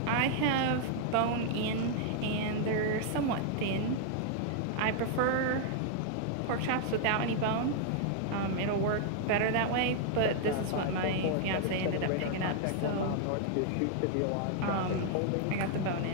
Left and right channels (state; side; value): different; both; correlation 0.00